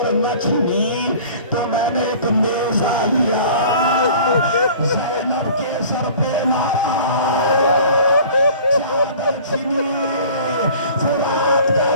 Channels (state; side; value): inverted; both; correlation -0.46